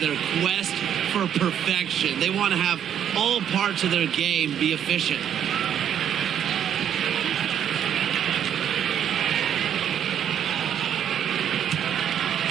quest for perfection. They want to have all parts of their game be efficient.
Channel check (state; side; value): quieter; left; 9.4 dB